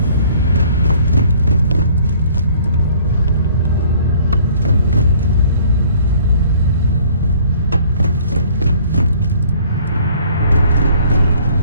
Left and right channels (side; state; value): both; inverted; correlation -0.56